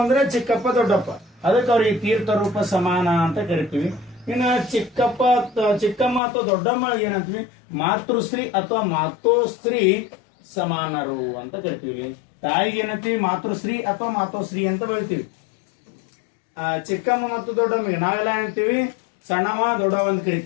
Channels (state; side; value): drops out; right; at 6.2 s